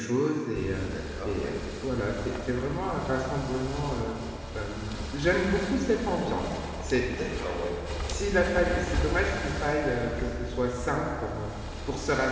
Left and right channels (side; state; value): both; identical; correlation 1.00